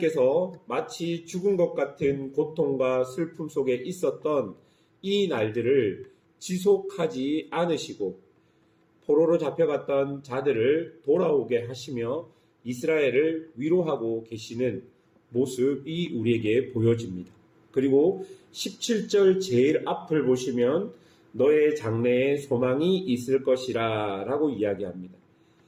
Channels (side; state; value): both; identical; correlation 1.00